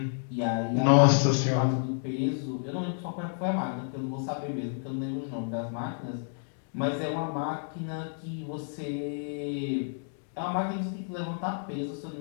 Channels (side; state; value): right; silent; digital silence